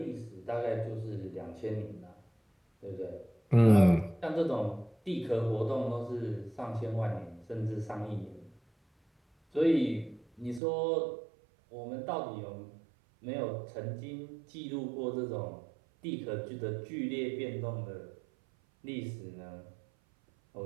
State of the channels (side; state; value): left; drops out; at 10.6 s